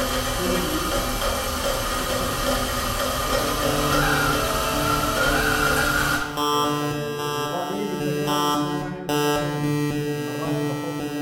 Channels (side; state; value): both; identical; correlation 1.00